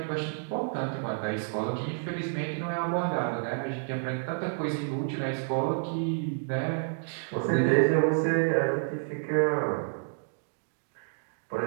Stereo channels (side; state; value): left; silent; digital silence